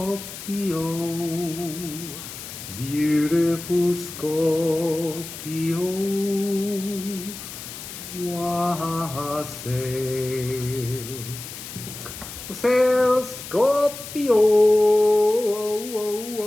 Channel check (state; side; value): noise; left; hiss, 11 dB below the sound